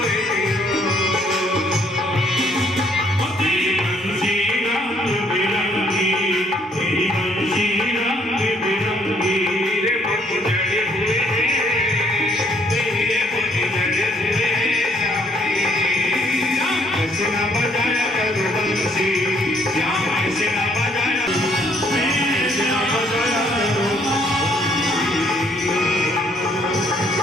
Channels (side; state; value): both; normal; correlation 0.67